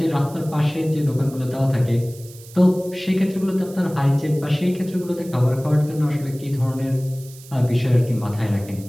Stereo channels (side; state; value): right; noise; hiss, 20 dB below the sound